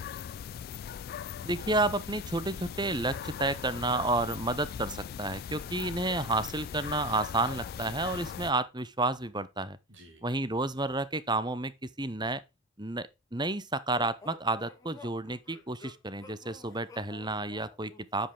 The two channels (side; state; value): both; normal; correlation 0.27